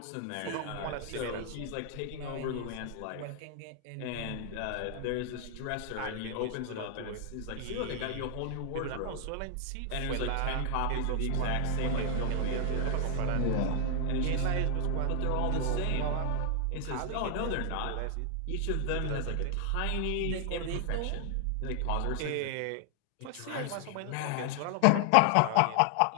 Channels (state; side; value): different; both; correlation 0.00